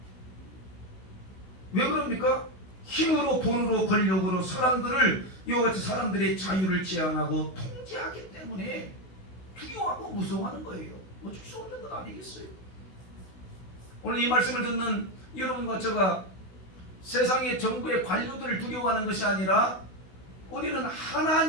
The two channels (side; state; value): right; late; 16 ms